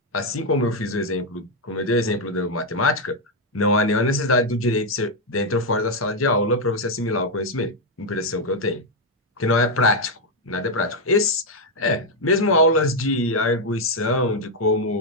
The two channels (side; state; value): both; normal; correlation 0.02